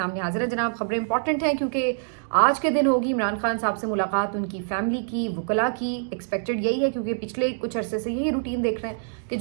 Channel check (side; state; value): left; silent; digital silence